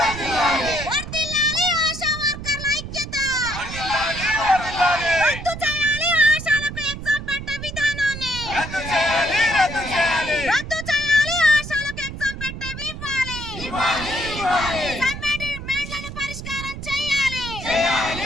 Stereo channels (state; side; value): noise; right; rumble, 9 dB below the sound